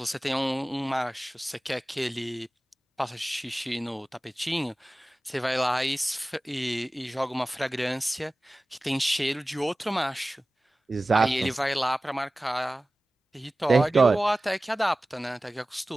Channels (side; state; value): both; normal; correlation 0.97